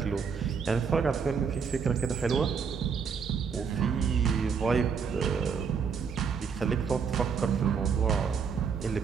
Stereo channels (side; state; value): left; quieter; 6.2 dB